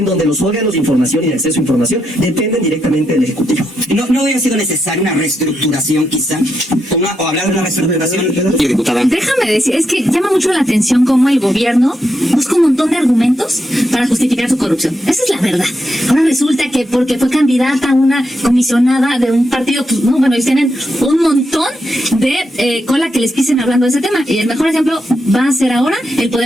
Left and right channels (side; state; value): both; normal; correlation 0.83